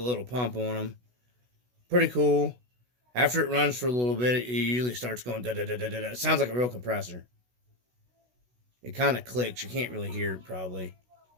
pump on them. Pretty cool. After it runs for a little bit, it usually starts going da-da-da-da-da. It sounds like a real compressor. It kind of clicks. You can't really hear it, probably.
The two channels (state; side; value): late; left; 16 ms